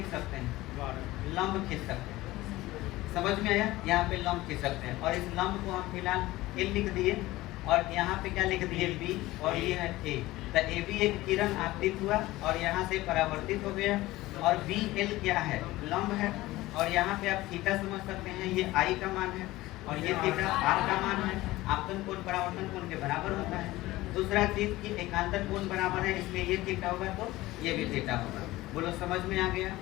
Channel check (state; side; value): quieter; right; 18.0 dB